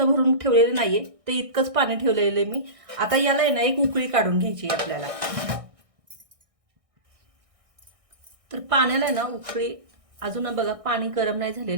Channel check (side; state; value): left; late; 1.6 ms